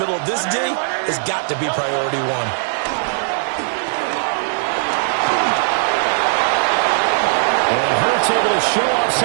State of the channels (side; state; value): left; silent; digital silence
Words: middle of this D, has got to be priority one. Able to show off